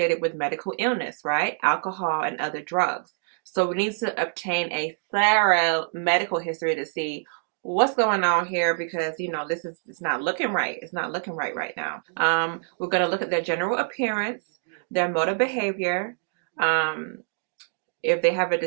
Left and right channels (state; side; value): silent; left; digital silence